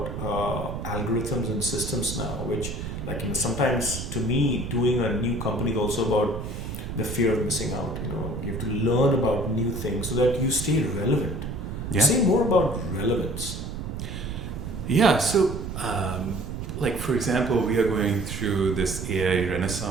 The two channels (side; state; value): right; noise; rumble, 6 dB below the sound